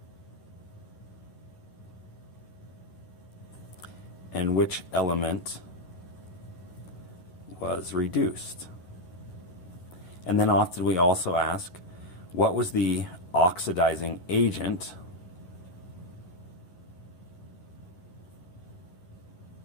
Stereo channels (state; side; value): late; right; 11 ms